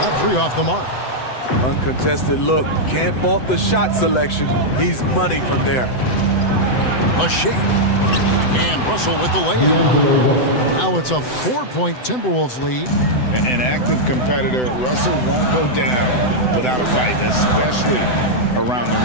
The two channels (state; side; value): late; right; 7.9 ms